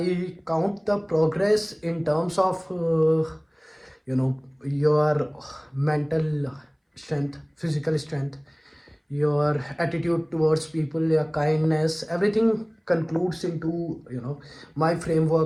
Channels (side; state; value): both; identical; correlation 1.00